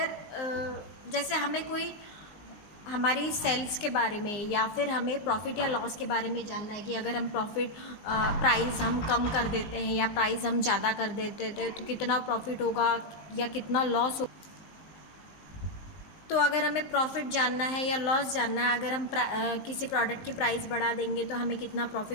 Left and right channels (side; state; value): right; late; 19 ms